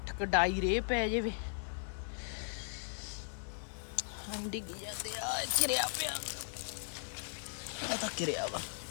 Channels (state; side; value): silent; right; digital silence